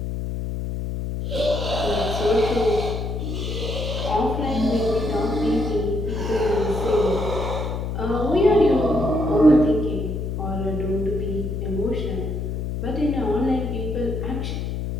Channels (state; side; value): noise; left; hum, 3 dB below the sound